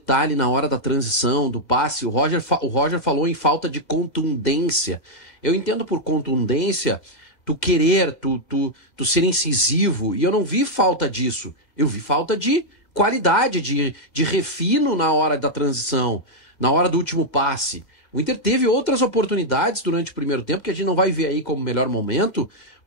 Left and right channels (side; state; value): right; late; 1.9 ms